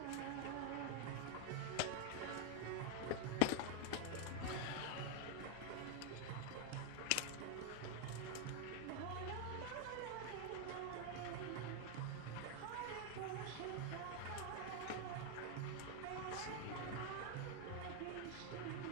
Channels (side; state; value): both; different; correlation 0.01